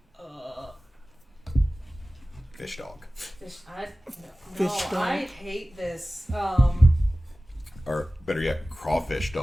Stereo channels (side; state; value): both; normal; correlation 0.96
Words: Fish dog. No, Fish dog. I hate this. Or better yet, crawfish